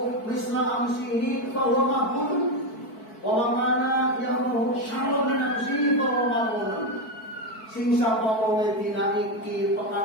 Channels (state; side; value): late; right; 4.5 ms